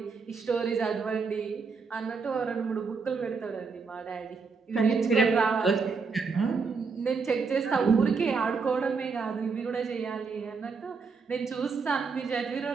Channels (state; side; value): quieter; left; 5.0 dB